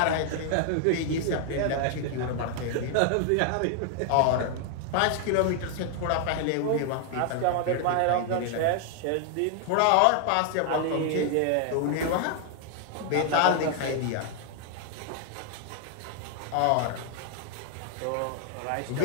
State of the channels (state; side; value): different; both; correlation 0.00